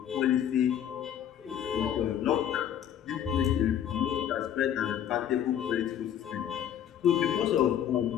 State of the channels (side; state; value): right; quieter; 10.0 dB